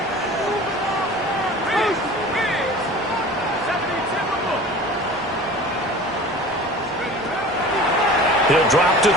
He'll drop to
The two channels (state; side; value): normal; both; correlation 0.40